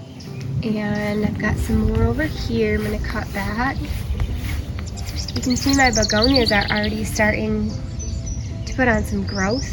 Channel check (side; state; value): both; identical; correlation 1.00